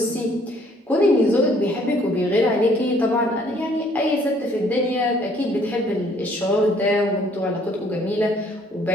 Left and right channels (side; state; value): both; normal; correlation 0.61